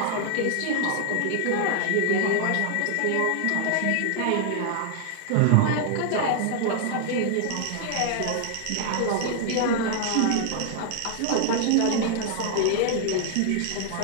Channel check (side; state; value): both; different; correlation 0.00